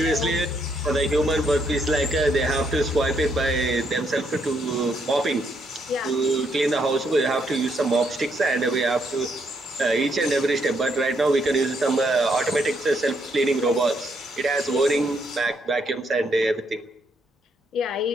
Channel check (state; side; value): normal; both; correlation 0.74